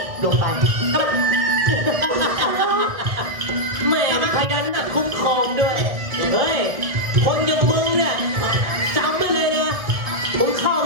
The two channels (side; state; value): left; late; 1.6 ms